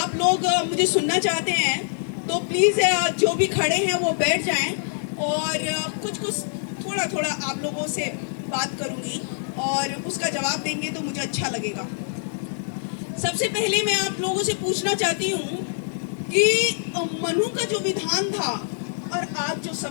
लोग मुझे सुनना चाहते हैं तो प्लीज़ जो भी खड़े हैं वो बैठ जाएं, और कुछ थोड़ा थोड़ा आप लोगों से बात करूँगी और उसका जवाब देंगे तो मुझे अच्छा लगेगा। सबसे पहले मैं आप लोगों से पूछना चाहती हूँ कि मनु का जो विधान था और आज जो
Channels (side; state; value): right; silent; digital silence